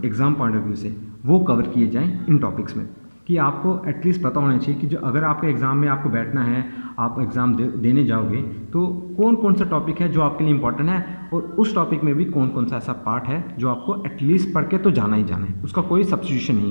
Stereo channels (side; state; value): both; inverted; correlation -1.00